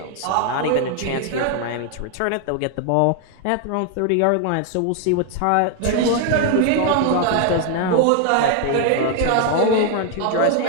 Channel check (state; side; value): different; both; correlation 0.01